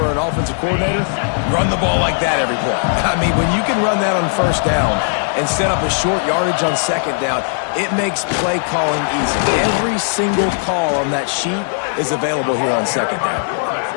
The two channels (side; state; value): right; silent; digital silence